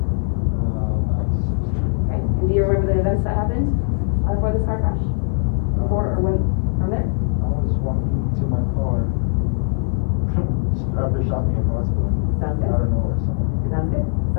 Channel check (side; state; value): right; silent; 58 dB below the other